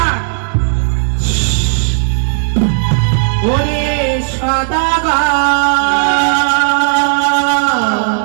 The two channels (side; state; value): left; silent; digital silence